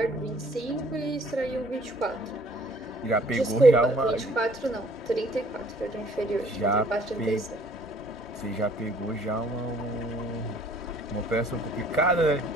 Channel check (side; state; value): both; normal; correlation 0.58